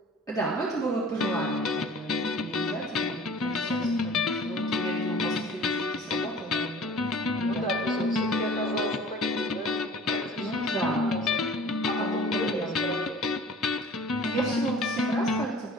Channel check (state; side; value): normal; both; correlation 0.46